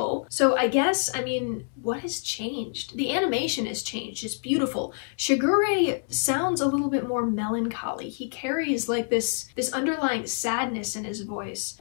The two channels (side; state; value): right; silent; 60 dB below the other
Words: So I guess, I mean, what has changed? The animation has changed. It's beautiful. Shigure sounds a little bit more melancholy. He carries like this underlying sadness in his voice